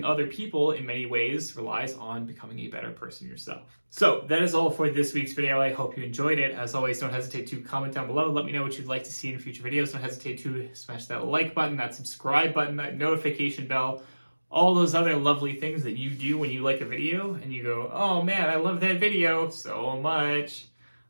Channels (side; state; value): both; inverted; correlation -1.00